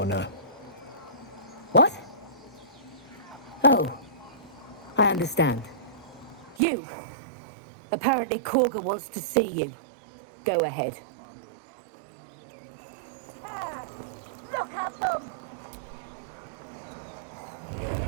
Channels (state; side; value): drops out; left; at 6.6 s